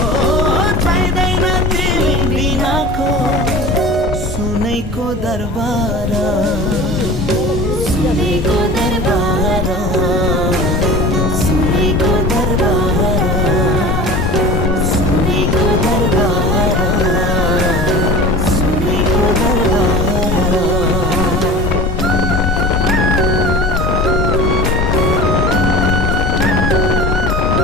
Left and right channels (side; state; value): both; normal; correlation 0.37